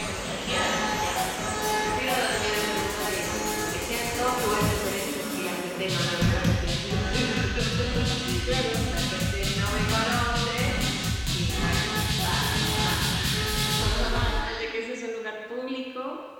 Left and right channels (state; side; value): identical; both; correlation 1.00